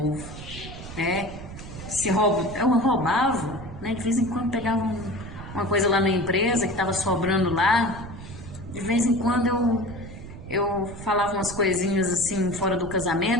Eu roubava, né? De vez em quando pegava uma coisa lá na empresa que estava sobrando lá. De vez em quando eu falava umas coisinhas assim fora do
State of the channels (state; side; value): noise; right; rumble, 12 dB below the sound